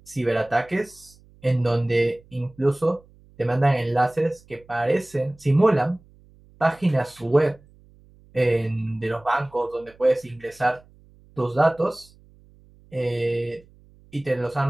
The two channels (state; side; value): noise; right; hum, 27 dB below the sound